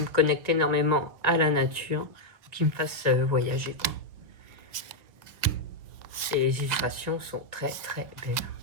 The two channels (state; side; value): late; left; 2.0 ms